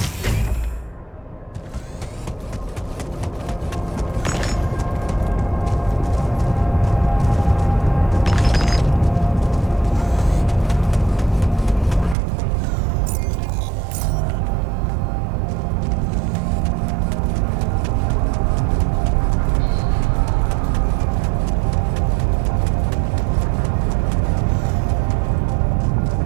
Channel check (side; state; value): left; drops out; at 12.2 s